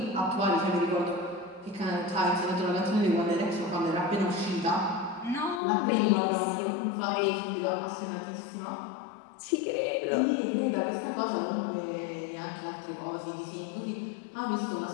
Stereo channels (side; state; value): right; drops out; at 5.6 s